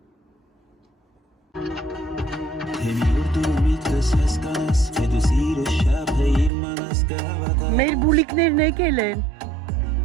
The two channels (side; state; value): left; drops out; at 6.5 s